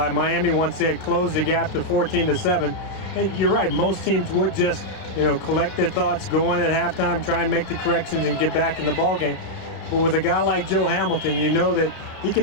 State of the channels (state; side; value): late; right; 32 ms